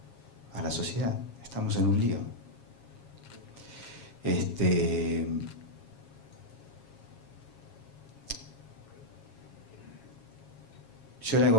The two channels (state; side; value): late; right; 7.3 ms